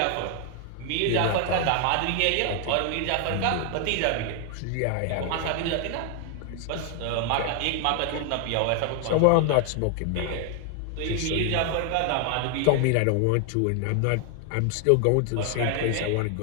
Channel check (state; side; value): different; both; correlation 0.00